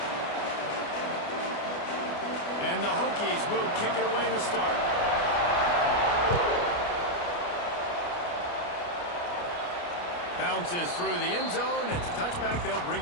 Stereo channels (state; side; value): late; right; 29 ms